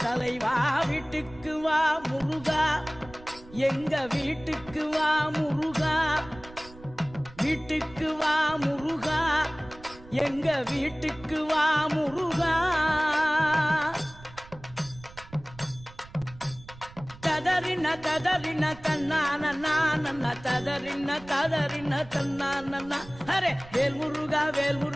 தலைவா வீட்டுக்கு வா முருகா எங்க வீட்டுக்கு வா முருகா வீட்டுக்கு வா முருகா எங்க வீட்டுக்கு வா முருகா ததறின ததறின தன்னான நான ததறின ததறின தன்னான அரே வேல் முருகா வேல்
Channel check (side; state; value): right; noise; rumble, 19 dB below the sound